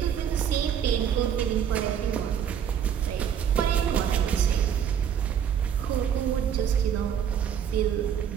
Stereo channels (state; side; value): quieter; left; 8.6 dB